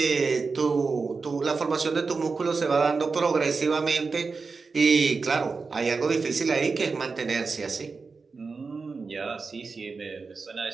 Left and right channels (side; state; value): left; quieter; 4.5 dB